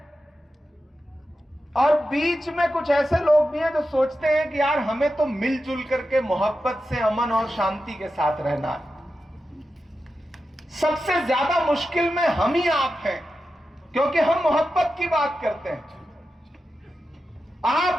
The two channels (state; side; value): normal; both; correlation 0.91